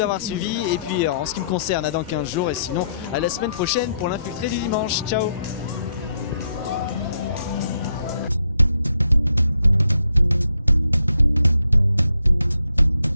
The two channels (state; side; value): inverted; both; correlation -0.76